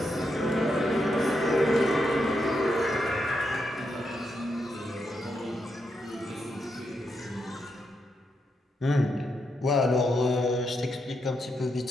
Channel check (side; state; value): both; normal; correlation 0.82